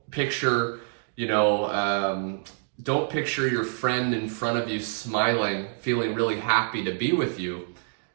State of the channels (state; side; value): silent; left; 60 dB below the other